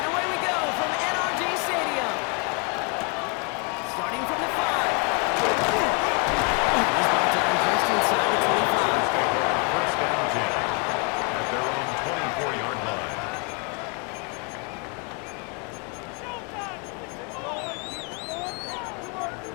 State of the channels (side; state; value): right; quieter; 34.1 dB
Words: away we go from NRG Stadium. Starting from the 5. He's brought down just inside the 25. First down 10 at their own 24-yard line.